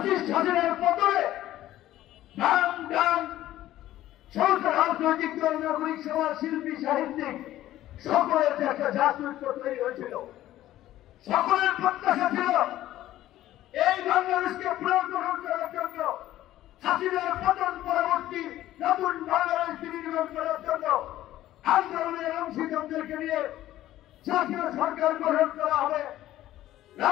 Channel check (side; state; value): right; quieter; 14.1 dB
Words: হাসিনার পতনে ডান ডান সরকার, রাজনৈতিক দল, নাগরিক সমাজ, শিল্পী, সাহিত্যিক সকলের যে একটা জাতীয়ত্ব তৈরি হয়েছিল, সকলের প্রত্যাশা ছিল এই বাংলাদেশকে পুনর্গঠন করার জন্য, হাসিনার পতন পরবর্তী নতুন বাংলাদেশ বিনির্মাণ করার জন্য আন্দোলনের অংশীদারদেরকে নিয়ে জাতীয় সরকার গঠন করা হবে,